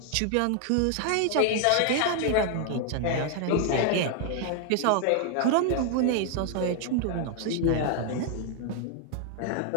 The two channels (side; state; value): both; different; correlation 0.00